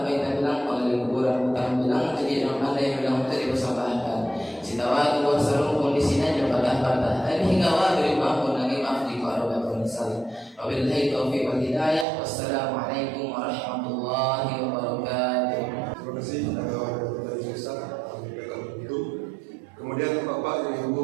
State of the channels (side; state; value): left; drops out; at 12.1 s